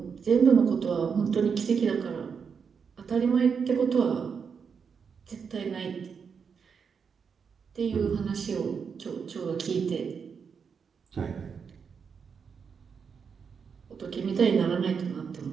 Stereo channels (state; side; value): quieter; left; 6.2 dB